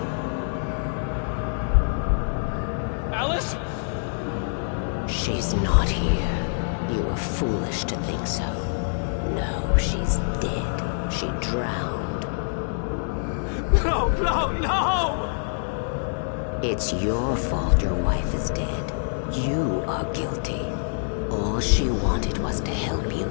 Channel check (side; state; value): right; silent; digital silence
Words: Alice? She's not here. You were foolish to think so. No, she's dead. She drowned. No, no, no! It's your fault your wife is dead. You are guilty. All she wanted was to help you